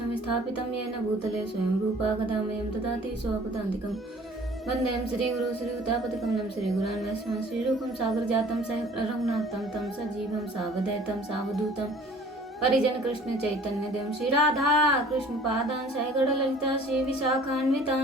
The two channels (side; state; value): both; normal; correlation 0.50